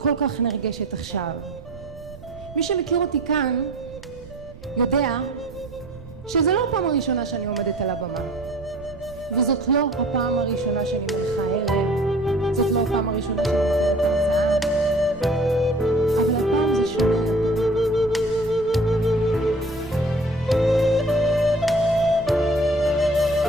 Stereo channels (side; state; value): right; noise; rumble, 18 dB below the sound